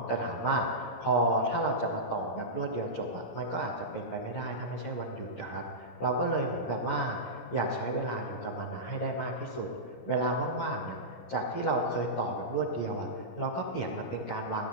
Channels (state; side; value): late; right; 17 ms